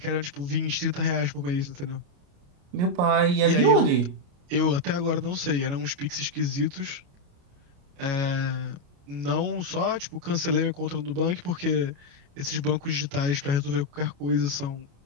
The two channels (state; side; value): late; left; 28 ms